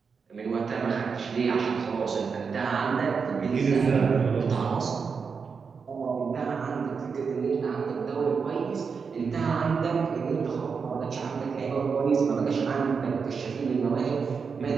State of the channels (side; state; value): left; quieter; 5.6 dB